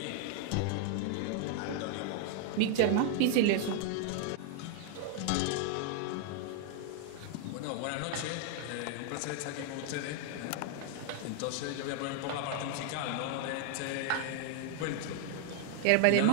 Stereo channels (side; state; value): both; different; correlation 0.00